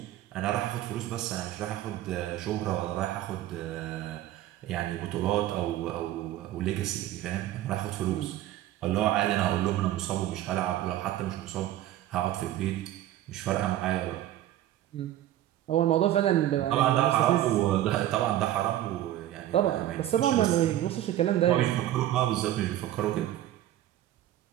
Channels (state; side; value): quieter; left; 13.3 dB